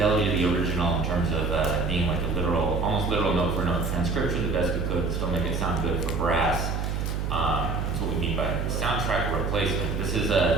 to the original in terms of being like a literal, almost literal note for note transcription, the best we could, still make it sound good for brass. That's what we mean by soundtrack replacement. This is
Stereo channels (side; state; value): right; noise; hum, 1 dB below the sound